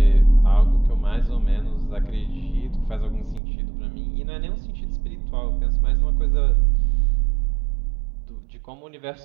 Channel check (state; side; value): drops out; left; at 3.4 s